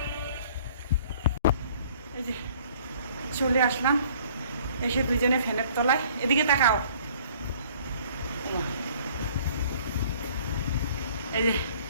এই যে চলে আসলাম, এসে দুজনে ফ্যানের তলায়। এদিকে তাকাও। এই যে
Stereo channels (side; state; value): both; inverted; correlation -0.55